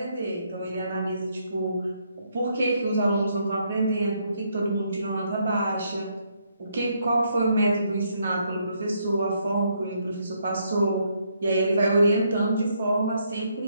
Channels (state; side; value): inverted; both; correlation -0.74